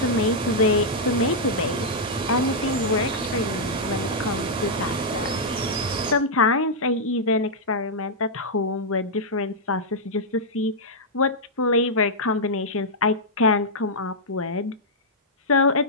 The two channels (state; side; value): normal; both; correlation -0.07